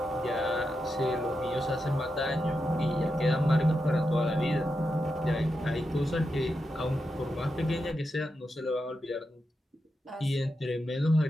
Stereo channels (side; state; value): both; normal; correlation 0.87